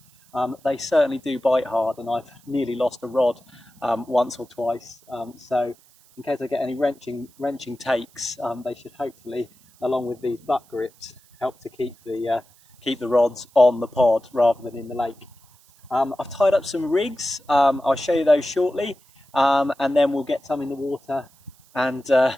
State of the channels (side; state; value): right; noise; hiss, 29 dB below the sound